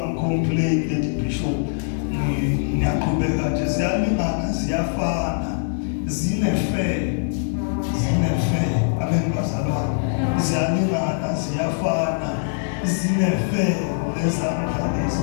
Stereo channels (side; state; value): right; silent; 64 dB below the other